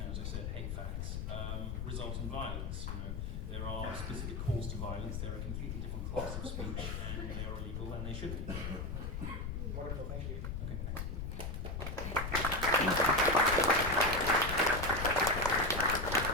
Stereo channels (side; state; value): left; noise; rumble, 4 dB below the sound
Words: as I said, hate facts, result in violence. There are specific calls to violence. They're a completely different class of speech, and they are illegal, and they should be. Wonderful, thank you. Okay, thanks.